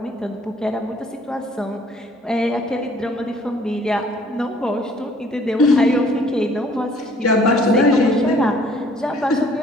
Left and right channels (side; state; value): both; normal; correlation 0.58